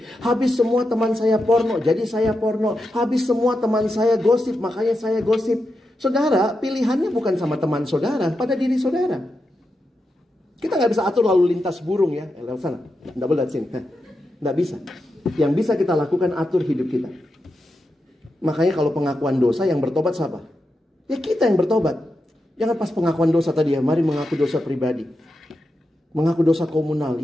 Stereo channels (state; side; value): normal; both; correlation 0.87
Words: Habis semua teman saya porno, jadi saya porno. Habis semua teman saya gosip, makanya saya gosip. Saudara, pilihannya bukan sama teman saudara, pada diri saudara. Kita nggak bisa atur lalu lintas burung ya, lewat sana, nggak boleh lewat sini. Nggak bisa. Yang bisa kita lakukan atur hidup kita. Makanya kalau pengakuan dosa yang bertobat siapa? Ya kita yang bertobat. Jangan pas pengakuan dosa tadi ya, mari mengaku dosa pribadi. Mengaku dosa komunal,